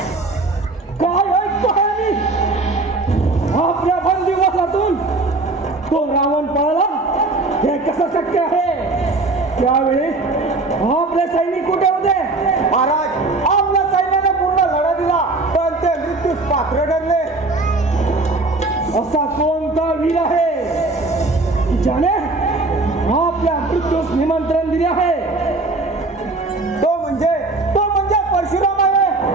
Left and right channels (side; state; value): left; quieter; 3.2 dB